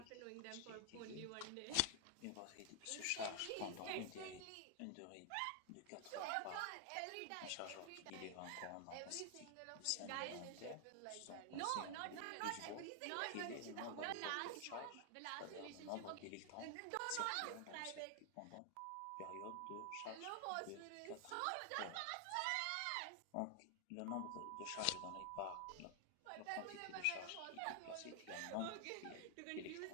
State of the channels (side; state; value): both; different; correlation 0.00